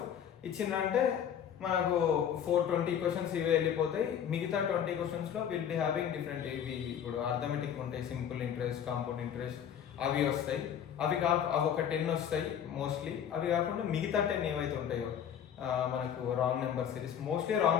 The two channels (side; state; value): right; quieter; 8.9 dB